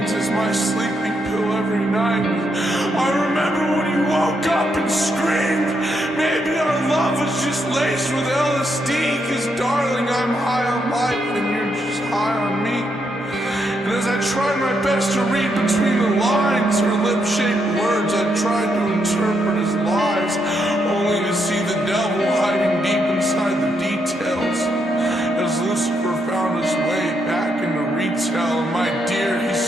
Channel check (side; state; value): both; normal; correlation 0.79